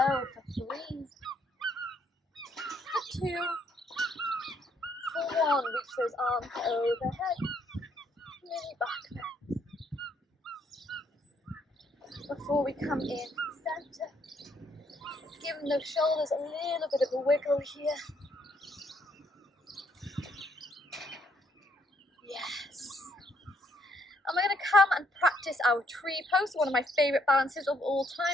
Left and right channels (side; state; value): both; normal; correlation 0.70